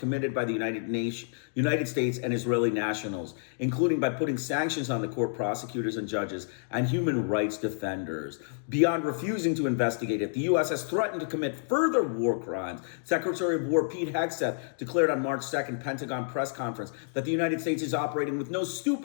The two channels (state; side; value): silent; right; digital silence